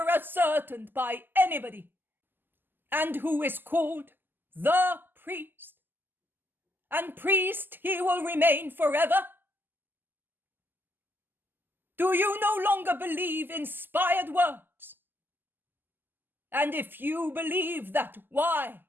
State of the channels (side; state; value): left; late; 0.093 ms